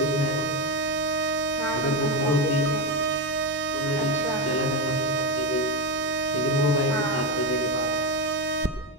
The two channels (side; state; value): both; normal; correlation 0.10